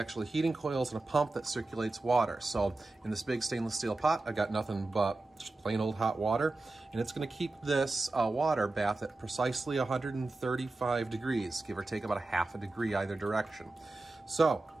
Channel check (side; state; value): left; quieter; 3.1 dB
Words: heating coils and a pump that circulates water. So in this big stainless steel pot, I got nothing but just plain old hot water, and it's gonna keep this water bath at precisely 135 degrees, give or take about a half a degree either direction. So